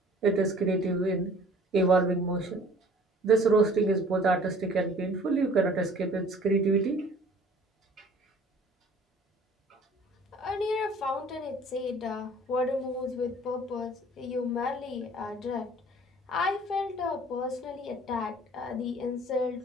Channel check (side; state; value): both; normal; correlation 0.51